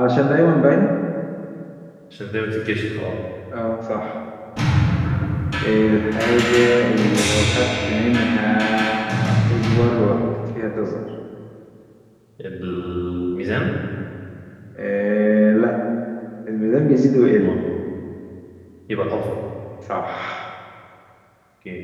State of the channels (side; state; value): both; identical; correlation 1.00